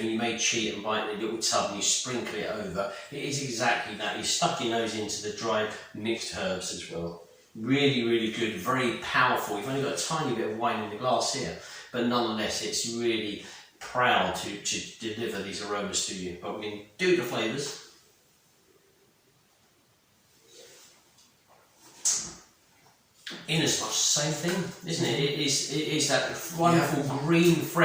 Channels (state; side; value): identical; both; correlation 1.00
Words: and you may cheat and buy it in a little tub and you sprinkle it over. It is exactly that. You stuck your nose into the dried mixed herbs as well. Really, really good, very powerful. You've only got a tiny bit of wine in the glass here, but nonetheless, it's really proud to deliver these aromas to you. But we can do the flavours. In as much same thing, isn't it? It is that wonderful green